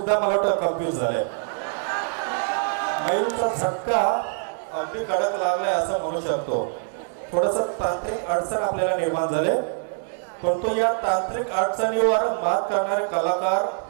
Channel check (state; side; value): silent; left; digital silence